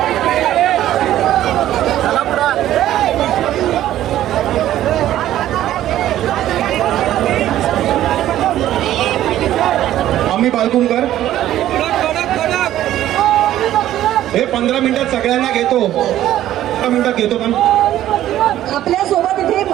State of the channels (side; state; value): left; quieter; 13.0 dB